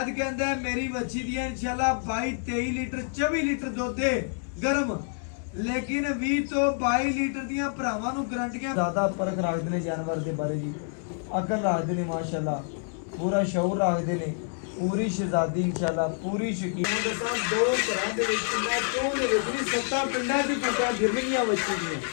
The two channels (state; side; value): silent; right; 58 dB below the other